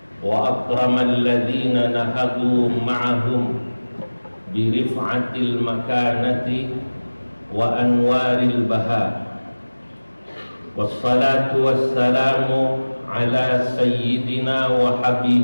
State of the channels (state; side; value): inverted; both; correlation -1.00